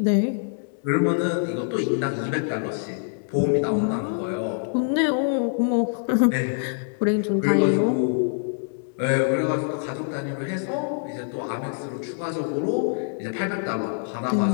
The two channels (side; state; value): right; silent; digital silence